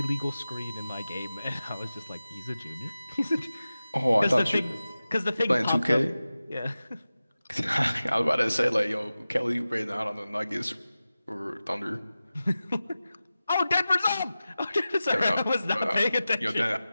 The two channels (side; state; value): both; inverted; correlation -0.95